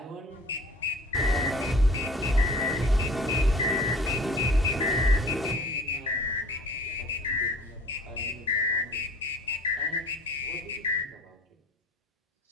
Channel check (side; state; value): both; normal; correlation 0.48